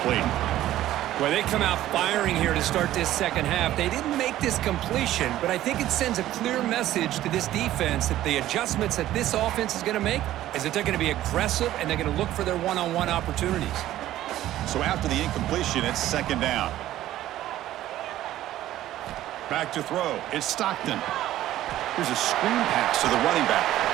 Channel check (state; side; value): quieter; left; 13.8 dB